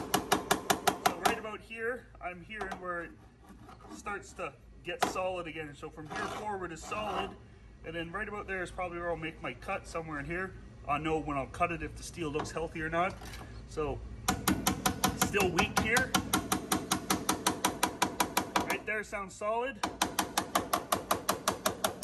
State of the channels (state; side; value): identical; both; correlation 1.00